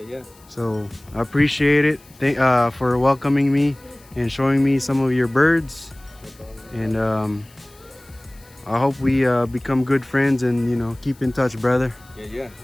So I appreciate it. For welcoming me and showing me some of your birds. And I hope we become good friends and keep in touch, brother. Yeah,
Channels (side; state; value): left; noise; hiss, 27 dB below the sound